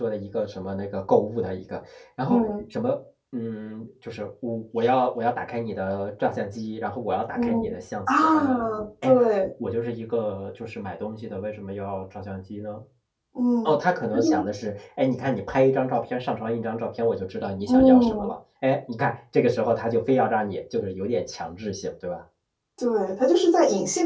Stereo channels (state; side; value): identical; both; correlation 1.00